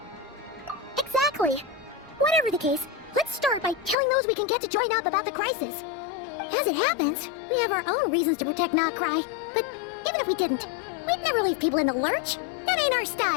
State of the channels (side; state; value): right; drops out; at 4.0 s